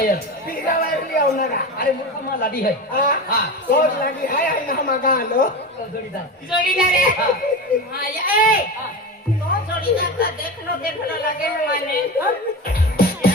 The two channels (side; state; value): both; normal; correlation 0.24